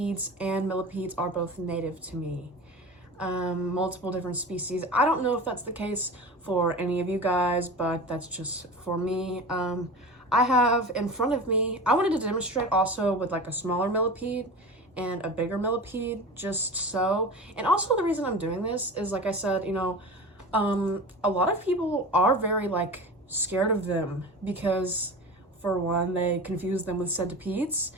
and millipedes are both native to me. Multiple different species. I don't know if that's the case for any of you guys, but that's just for me. I have in front of me, I wanted to demonstrate also with like a smaller millipede, and a bigger millipede, just so. And also the reason I'm doing this is, like I said, you know, a lot of people are very like scared of them because, for one, they confuse them with centipedes,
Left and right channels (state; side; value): normal; both; correlation 0.32